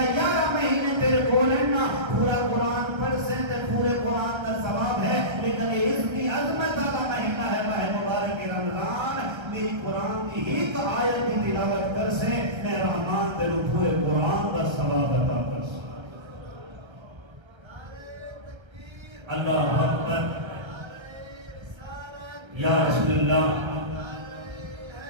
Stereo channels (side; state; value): left; late; 1.3 ms